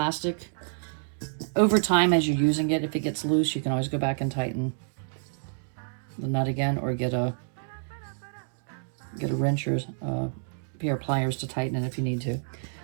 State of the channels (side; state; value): left; silent; digital silence